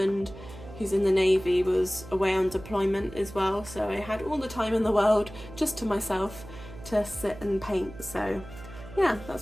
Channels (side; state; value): right; noise; hum, 16 dB below the sound